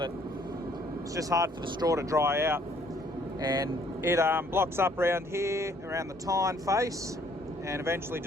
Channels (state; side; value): normal; both; correlation 0.63